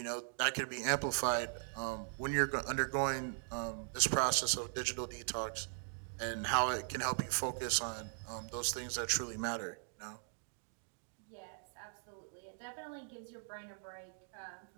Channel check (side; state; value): left; silent; digital silence